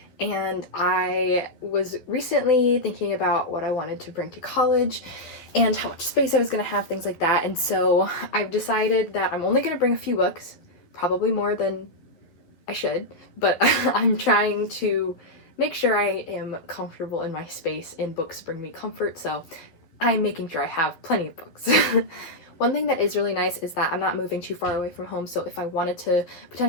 and I was recently thinking about what I wanted to bring to college and how much space I was going to have, things like that. And so I've decided that I'm only going to bring a few books, probably more than I should, but I'm trying to make sure I am comfortable in my space and books bring me comfort, so I'm making sure I have plenty of books. One thing that is really nice is that I'm not moving too far away from home, so if I wanted to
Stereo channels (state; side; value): late; right; 12 ms